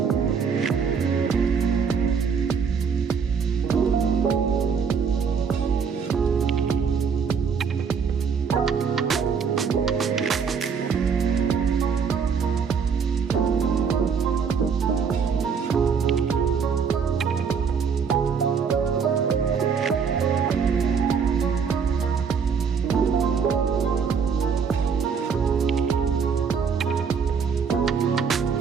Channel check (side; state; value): left; quieter; 6.2 dB